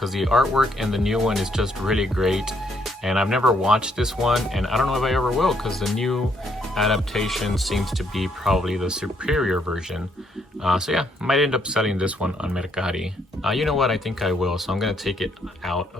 the artwork and the new one is just really great, and I've never watched this one, and I don't know if I ever will because the new adaptation seems to be probably the superior version. So yeah, might end up selling this one on Mercari. You know what, I think I will, so I'm gonna take it out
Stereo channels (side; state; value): both; normal; correlation 0.72